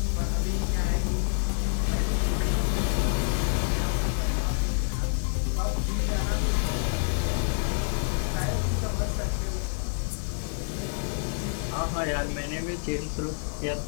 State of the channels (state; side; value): silent; right; 60 dB below the other